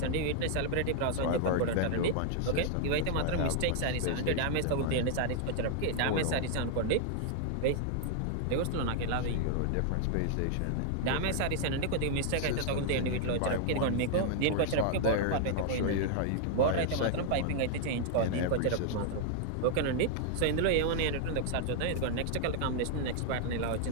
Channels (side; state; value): both; different; correlation 0.00